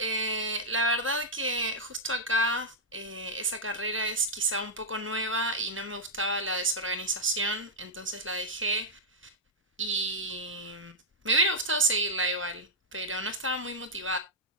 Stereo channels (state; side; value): normal; both; correlation -0.07